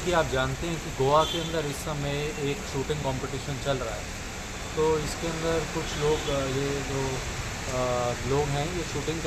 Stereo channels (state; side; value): identical; both; correlation 1.00